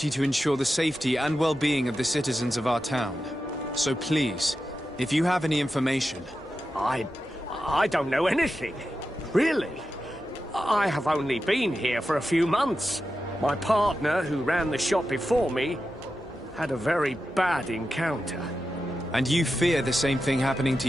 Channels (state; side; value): normal; both; correlation 0.90